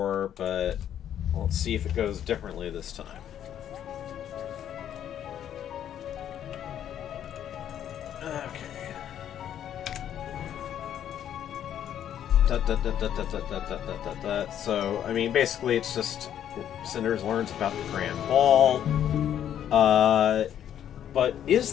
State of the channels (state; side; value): quieter; right; 10.2 dB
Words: but let's see if it goes differently this time. Okay. So, I mean, basically it's just Cinders learns about the Grand Ball. But is